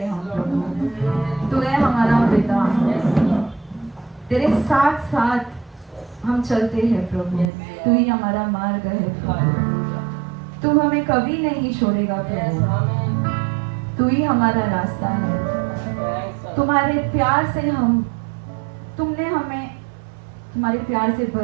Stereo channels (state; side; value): drops out; left; at 7.5 s